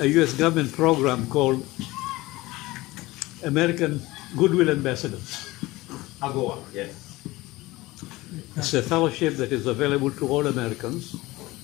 U.S. government program called American Goodwill Ambassadors. AGOA, yes. It's a fellowship that is available to all Americans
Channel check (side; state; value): right; quieter; 19.8 dB